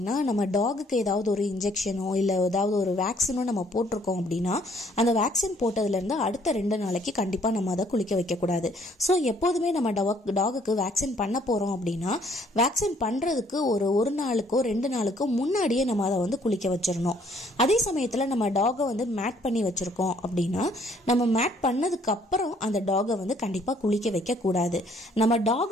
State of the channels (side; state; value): both; normal; correlation 0.63